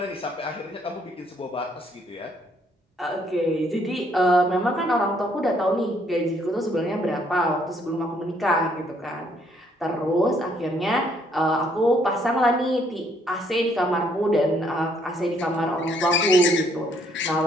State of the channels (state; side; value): normal; both; correlation 0.68